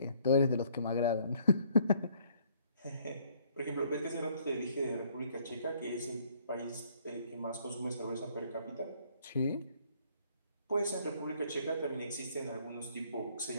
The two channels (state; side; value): inverted; both; correlation -0.63